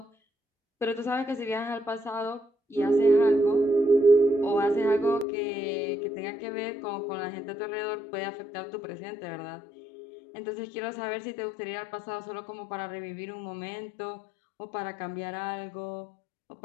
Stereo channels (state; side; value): drops out; right; at 5.2 s